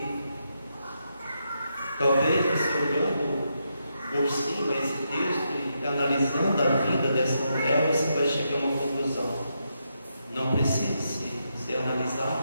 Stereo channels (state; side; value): inverted; both; correlation -0.82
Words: talvez você olhando por cima analisando a vida dessa mulher, você vai chegar a uma conclusão. Não precisa ser